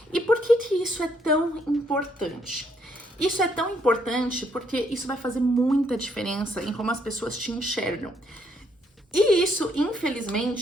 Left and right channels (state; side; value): normal; both; correlation 0.71